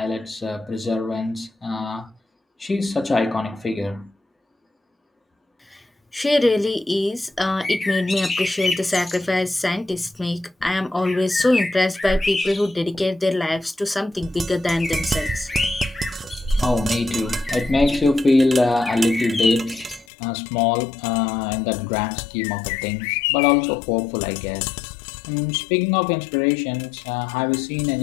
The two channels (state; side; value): drops out; right; at 20.1 s